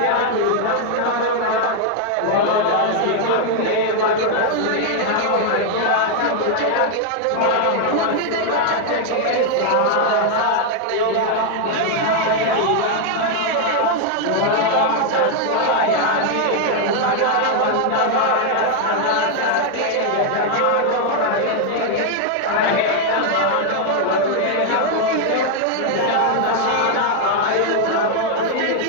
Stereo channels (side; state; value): both; different; correlation 0.00